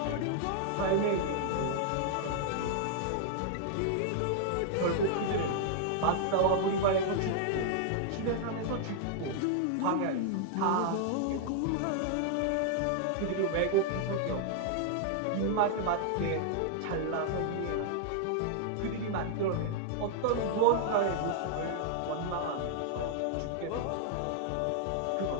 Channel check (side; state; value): both; different; correlation -0.01